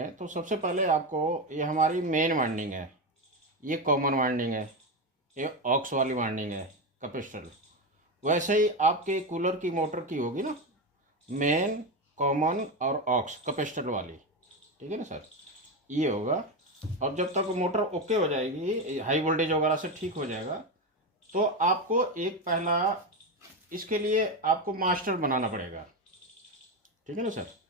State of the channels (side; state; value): both; normal; correlation 0.14